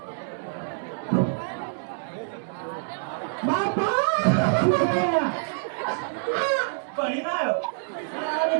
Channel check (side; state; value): left; silent; digital silence